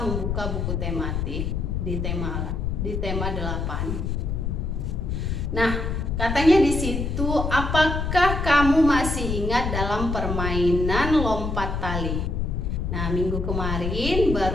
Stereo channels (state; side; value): noise; left; rumble, 1 dB below the sound